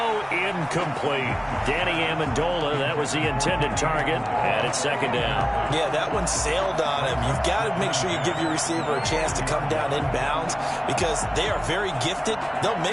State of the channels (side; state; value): both; identical; correlation 1.00